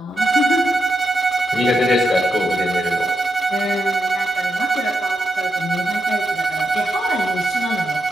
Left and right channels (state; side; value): normal; both; correlation 0.83